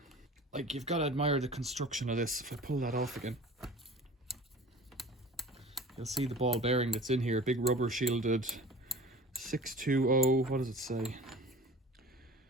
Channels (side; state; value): both; normal; correlation 0.42